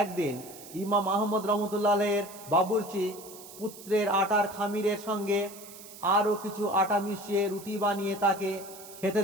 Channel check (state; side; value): noise; right; hiss, 16 dB below the sound